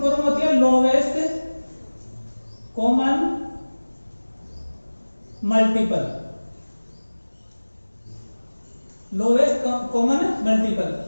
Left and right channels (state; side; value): inverted; both; correlation -1.00